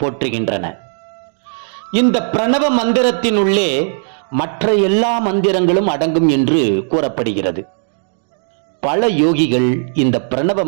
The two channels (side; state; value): left; silent; digital silence